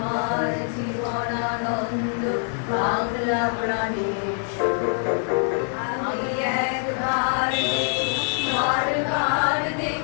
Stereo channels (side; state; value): right; silent; 59 dB below the other